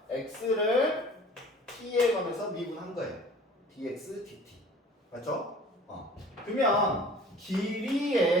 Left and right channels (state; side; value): normal; both; correlation 0.47